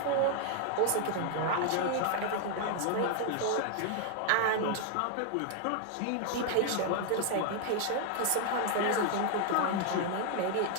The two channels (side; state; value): both; different; correlation 0.00